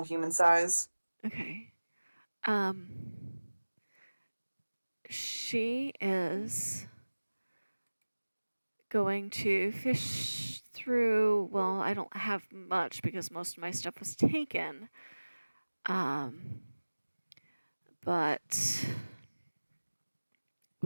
human size. Okay. She is going to fish through. Well, I don't have much because most of my stuff was taken. But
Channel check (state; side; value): inverted; both; correlation -1.00